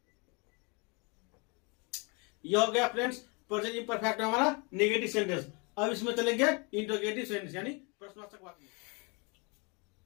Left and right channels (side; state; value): right; quieter; 31.3 dB